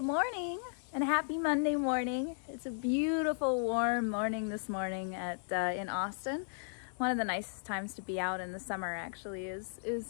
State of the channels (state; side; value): silent; right; digital silence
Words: morning and happy Monday morning. It's a beautiful warm morning this morning in Austin. One of the nicest times to be out in the summer actually is